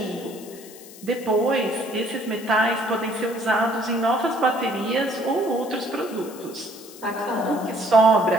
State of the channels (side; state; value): left; noise; hiss, 18 dB below the sound